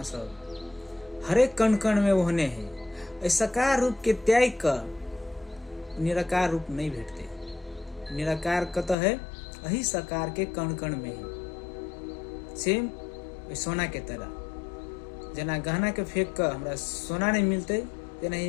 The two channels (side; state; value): right; drops out; at 9.0 s